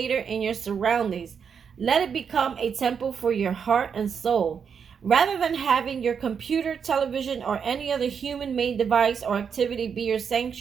in your surroundings. Let it become a temple for your heart and soul. Rather than having your computer, television, or any other human-made device or activity be your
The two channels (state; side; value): quieter; left; 6.8 dB